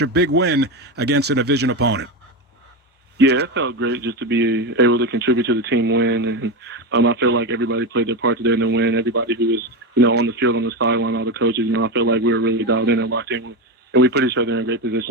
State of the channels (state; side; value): normal; both; correlation 0.15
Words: big win against a division opponent? Yeah, it felt great just to be able to contribute to the team win, and I feel like everybody played their part today in the win. Everybody who was, on the field, on the sideline, all the coaches, I feel like we were really dialed in and locked in, and we put each other in great